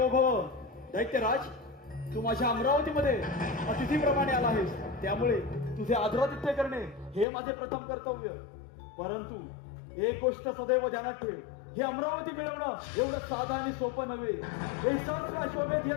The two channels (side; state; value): right; drops out; at 7.2 s